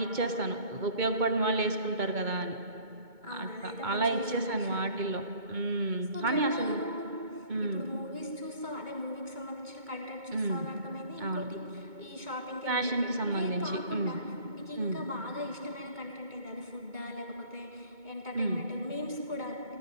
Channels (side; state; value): left; late; 2.2 ms